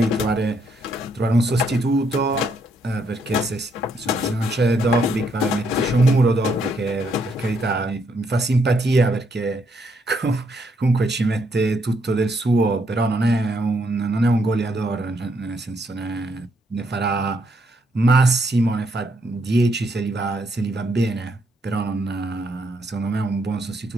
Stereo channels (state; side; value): normal; both; correlation 0.74